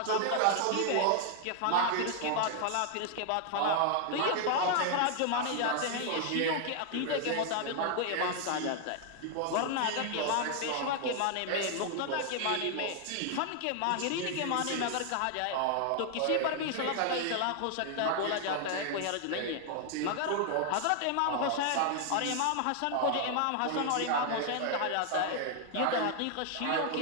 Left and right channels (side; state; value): both; different; correlation 0.00